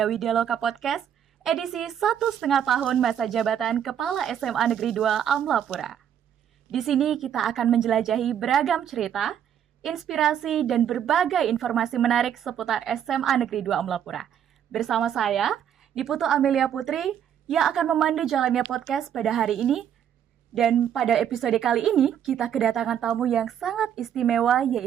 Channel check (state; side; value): quieter; left; 9.4 dB